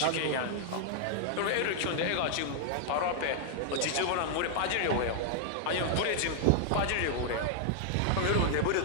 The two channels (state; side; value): different; both; correlation -0.01